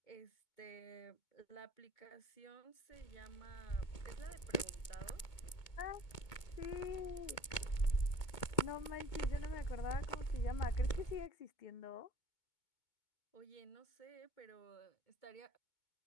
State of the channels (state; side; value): late; right; 2.2 ms